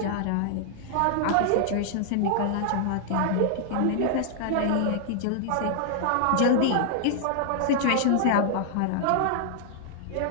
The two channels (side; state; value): both; different; correlation -0.01